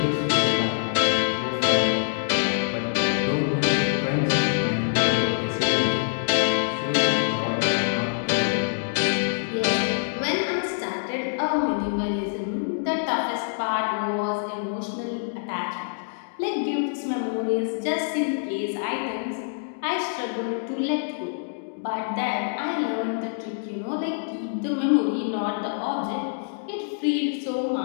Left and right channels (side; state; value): right; silent; digital silence